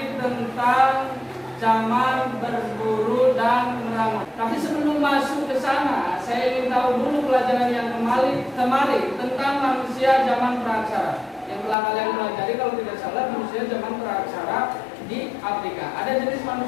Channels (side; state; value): right; drops out; at 11.8 s